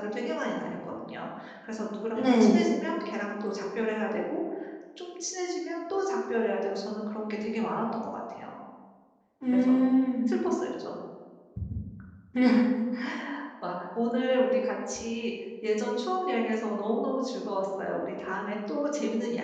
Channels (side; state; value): both; identical; correlation 1.00